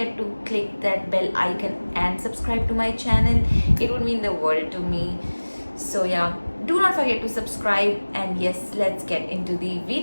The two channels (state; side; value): inverted; both; correlation -1.00